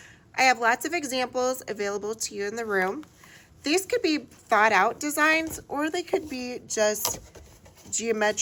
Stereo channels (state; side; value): identical; both; correlation 1.00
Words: I have lots of examples available to you in the room. These could be thought out designs, or they could be just